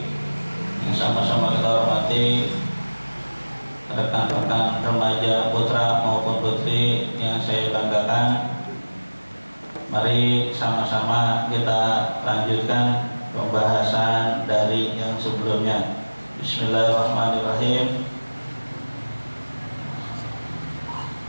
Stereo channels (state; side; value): inverted; both; correlation -1.00